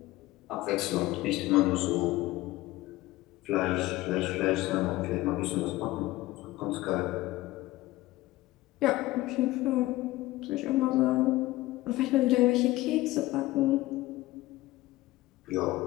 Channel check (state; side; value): quieter; right; 18.1 dB